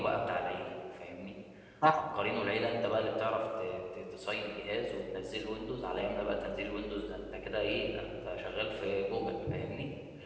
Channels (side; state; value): both; identical; correlation 1.00